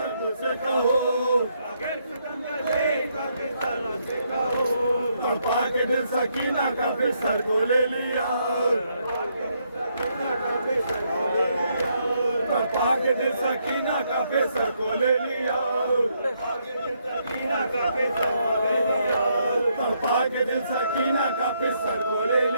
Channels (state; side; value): inverted; both; correlation -0.75